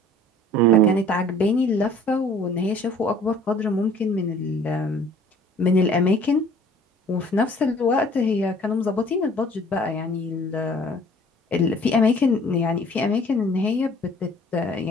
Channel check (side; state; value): both; normal; correlation 0.52